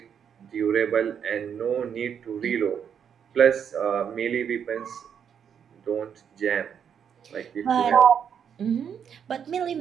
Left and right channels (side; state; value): left; quieter; 7.9 dB